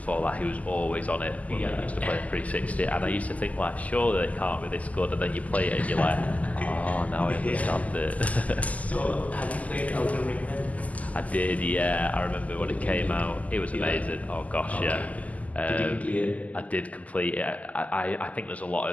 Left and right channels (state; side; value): late; right; 0.074 ms